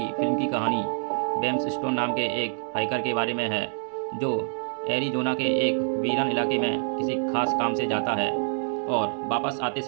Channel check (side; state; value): left; silent; 61 dB below the other